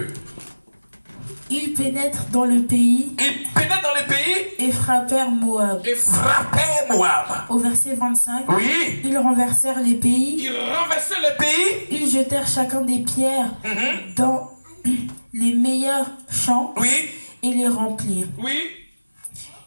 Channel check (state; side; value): inverted; both; correlation -1.00